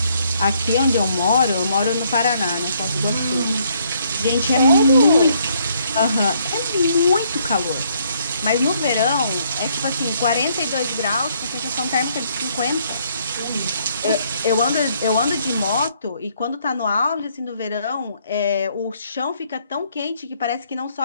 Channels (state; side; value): inverted; both; correlation -0.69